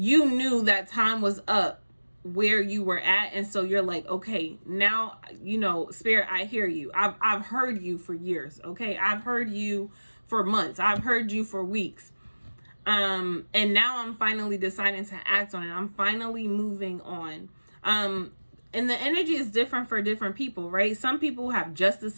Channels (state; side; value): inverted; both; correlation -1.00